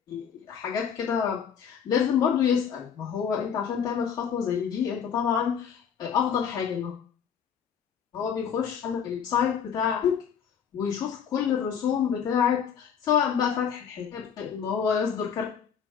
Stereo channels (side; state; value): right; quieter; 7.6 dB